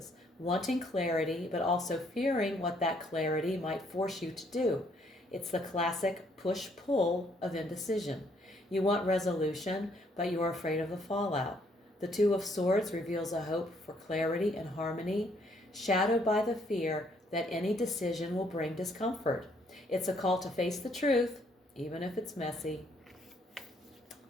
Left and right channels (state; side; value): normal; both; correlation 0.68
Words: wanting clarity, but also fearing what that clarity might force you to do. It's the classic push-pull of indecision. You want resolution, but you're afraid of the fallout. The Two of Swords reveals a hope for clarity and harmony, shadowed by the fear that any decision will bring discomfort. It's a call to face the truth, even if it's messy.